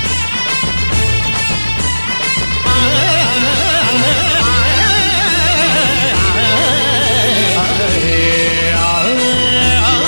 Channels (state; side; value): inverted; both; correlation -1.00